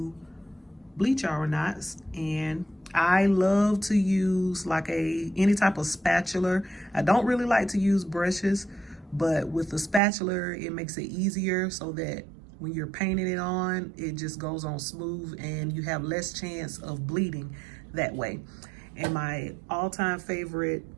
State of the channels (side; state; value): left; drops out; at 10.0 s